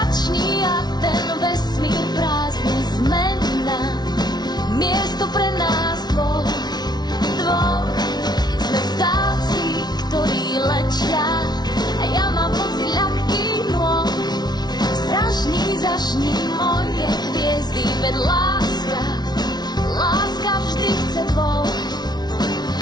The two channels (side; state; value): right; late; 0.20 ms